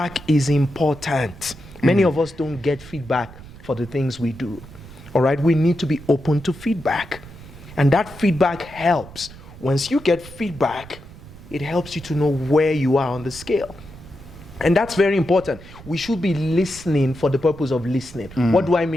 is important. Many of us don't get feedback for the things we do. All right, we need to be open to feedback. And that feedback helps. Once you get feedback, it helps you to know where you are on the scale. And that's very important. We should be listening for the purpose of listening. What do I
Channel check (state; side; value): noise; right; rumble, 18 dB below the sound